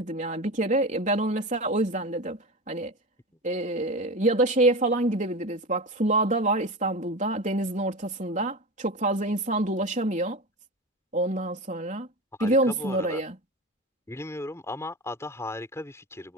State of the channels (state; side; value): normal; both; correlation 0.25